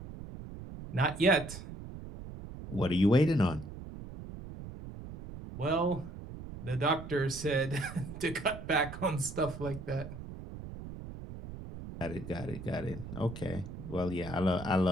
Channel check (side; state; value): right; noise; rumble, 11 dB below the sound